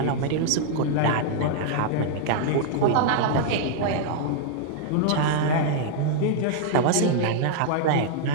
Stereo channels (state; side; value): different; both; correlation -0.01